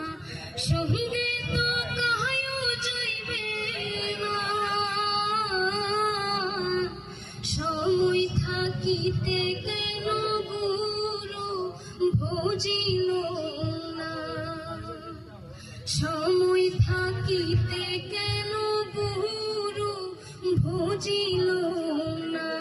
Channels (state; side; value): identical; both; correlation 1.00